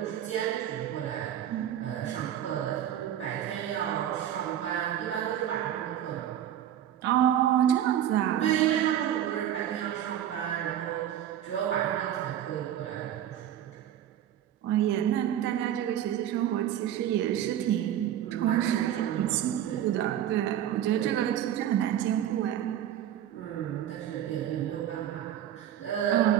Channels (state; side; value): quieter; left; 10.9 dB